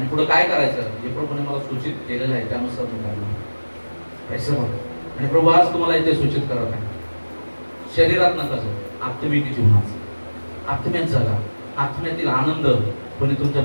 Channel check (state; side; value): inverted; both; correlation -1.00